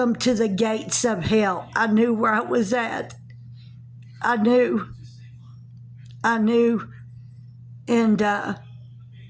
to the gates of hell." I knew where I was at. I knew. And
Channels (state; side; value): identical; both; correlation 1.00